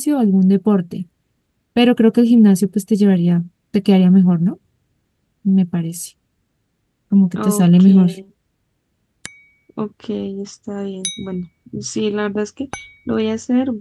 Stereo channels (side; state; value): both; identical; correlation 1.00